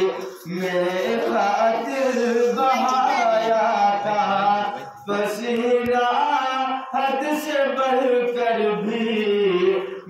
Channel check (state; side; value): identical; both; correlation 1.00